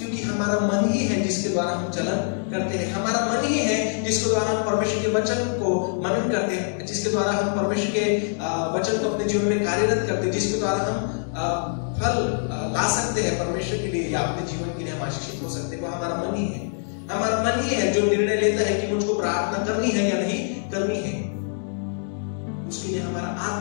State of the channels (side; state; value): right; silent; digital silence